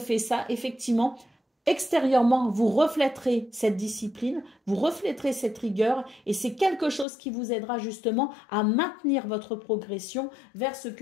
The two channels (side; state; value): right; drops out; at 7.1 s